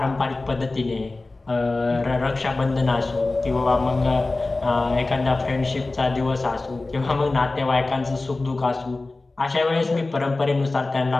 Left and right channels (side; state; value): right; quieter; 3.2 dB